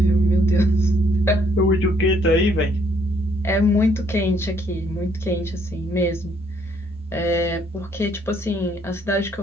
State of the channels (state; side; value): normal; both; correlation 0.67